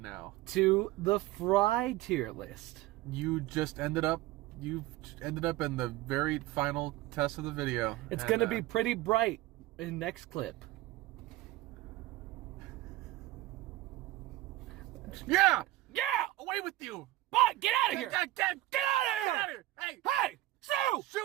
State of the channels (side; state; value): left; quieter; 16.8 dB